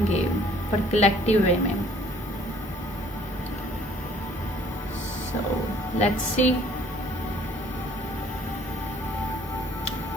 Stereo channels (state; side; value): normal; both; correlation 0.57